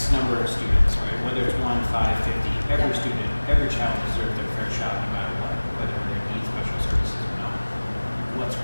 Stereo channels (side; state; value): both; inverted; correlation -1.00